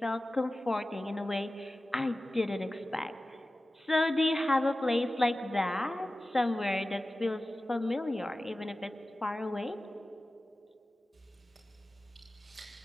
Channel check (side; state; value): both; normal; correlation 0.96